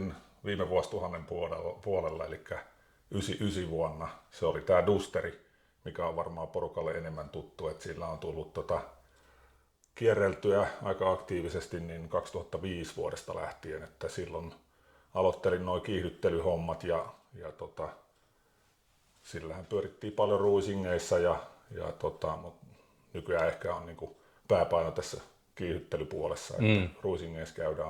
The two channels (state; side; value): identical; both; correlation 1.00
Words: viime vuosituhannen puolella, eli 99 vuonna. Se oli tää Dusteri, mikä on varmaan porukalle enemmän tuttu, että sillä on tullut kierreltyä aika aktiivisesti niin 2005 vuodesta lähtien, että silloin aloittelin nuo kiihdyttelyhommat ja sillähän pyörittiin paljon ruisingeissa mutta nykyään ehkä on niinku pääpaino tässä kiihdyttelypuolessa, että ruisingeissa